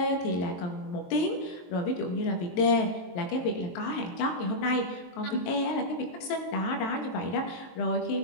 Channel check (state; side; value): late; right; 23 ms